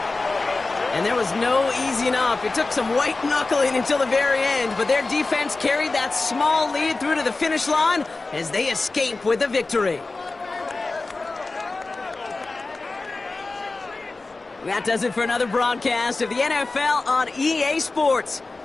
And there was no easing up. It took some white knuckling until the very end, but their defense carried that small lead through to the finish line as they escape with the victory. That does it for another broadcast of the NFL on EA Sports.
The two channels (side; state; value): right; quieter; 3.5 dB